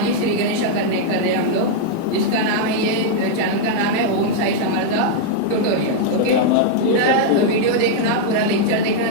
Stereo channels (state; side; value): different; both; correlation -0.01